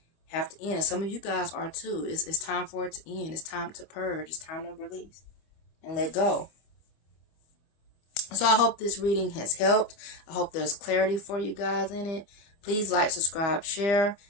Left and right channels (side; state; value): right; late; 25 ms